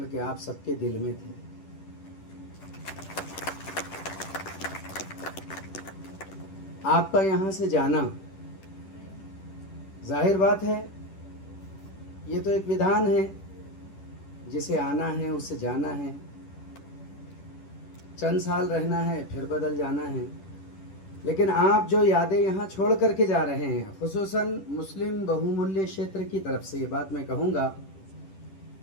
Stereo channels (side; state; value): right; late; 10 ms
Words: आप सबके दिल में थे। आपका यहां से जाना, जाहिर बात है ये तो एक विधान है, जिसे आना है उससे जाना है, चंद साल रहना है फिर बदल जाना है। लेकिन आप जो यादें यहाँ छोड़ करके जा रहे हैं, खुसूसन मुस्लिम बहुमूल्य क्षेत्र की तरफ से ये बात मैं कहूँगा